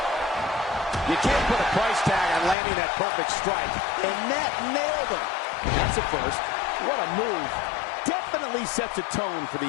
You can't put a price tag on landing that perfect strike. And that nailed him. That's a first. What a move. Definitely sets a tone for the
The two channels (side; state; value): right; drops out; at 2.6 s